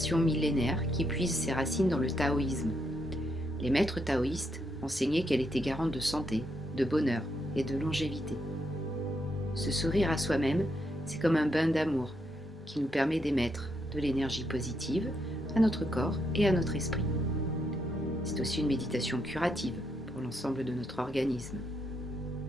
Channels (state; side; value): normal; both; correlation 0.78